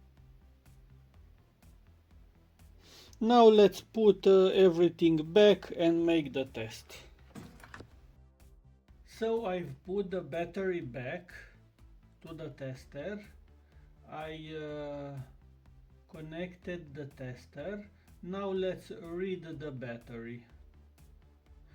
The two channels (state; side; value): identical; both; correlation 1.00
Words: Now let's put everything back and make the test. So I've put the battery back to the tester. I Connected the tester. Now let's read the battery.